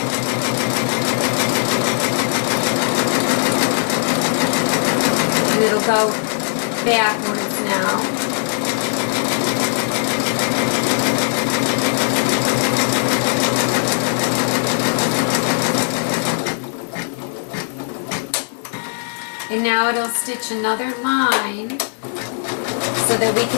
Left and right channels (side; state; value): right; silent; 66 dB below the other